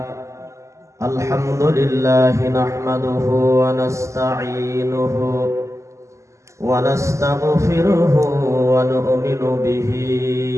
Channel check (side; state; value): left; late; 0.14 ms